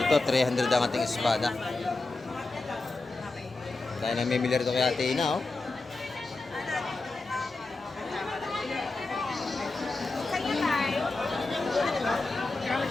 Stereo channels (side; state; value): right; quieter; 3.4 dB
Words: Ito, 300 ang ating espada. Kaya namimili rito kay Ate Ina, oh.